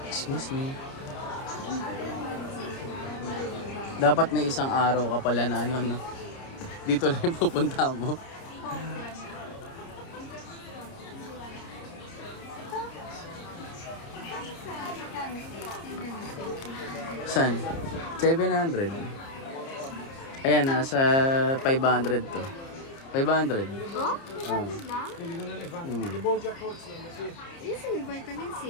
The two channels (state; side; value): late; right; 30 ms